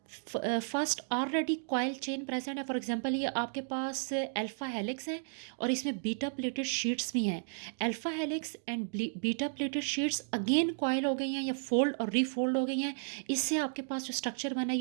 first already coil chain present है। फॉर एग्जांपल ये आपके पास अल्फा हेलिक्स है और इसमें बीटा प्लेटेड शीट्स भी हैं। Alpha helix and beta pleated sheets again coil हो गई हैं या फोल्ड और रीफोल्ड हो गई हैं। इससे आपके पास जो स्ट्रक्चर बना है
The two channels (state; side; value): silent; left; digital silence